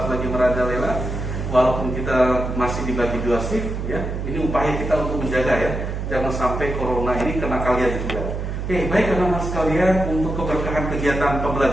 merajalela. Walaupun kita masih dibagi dua shift ya, ini upaya kita untuk menjaga ya. Jangan sampai corona ini kena kalian juga. Oke, baik anak-anak sekalian, untuk keberkahan kegiatan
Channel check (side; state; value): right; noise; hum, 4 dB below the sound